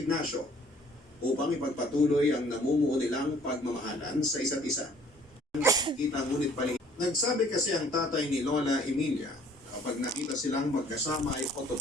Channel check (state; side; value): normal; both; correlation 0.57